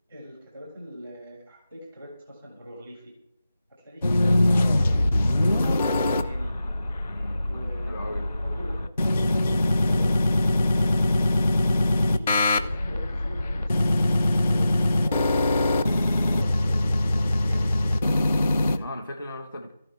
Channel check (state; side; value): inverted; both; correlation -0.92